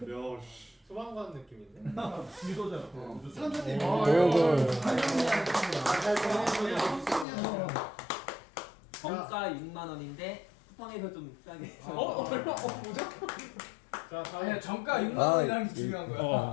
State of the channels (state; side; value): drops out; right; at 7.2 s